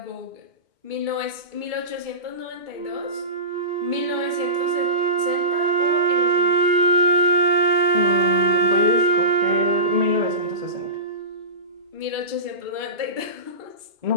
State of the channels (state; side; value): late; left; 2.3 ms